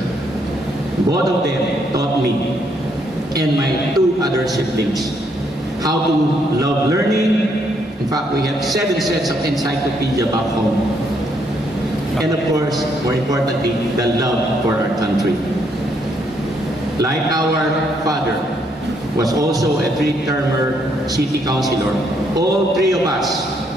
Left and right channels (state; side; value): normal; both; correlation 0.73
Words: Both of them taught me and my 2 other siblings how to love learning. In fact, we have 7 sets of encyclopedia back home. And of course, more importantly, the love for our country. Like our father was also a 3-termer city councilor, all 3 of us